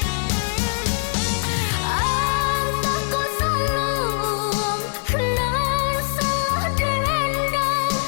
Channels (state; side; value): silent; right; 58 dB below the other